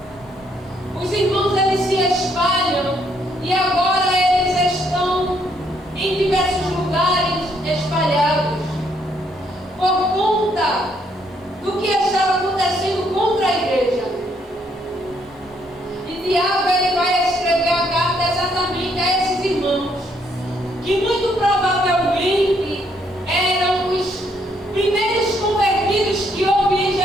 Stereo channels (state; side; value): normal; both; correlation 0.71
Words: Os irmãos eles se espalham e agora eles estão em diversos lugares espalhados por conta do que estava acontecendo contra a igreja. E Tiago ele vai escrever a carta exatamente a esses irmãos que muito provavelmente eram os primeiros convertidos que houve em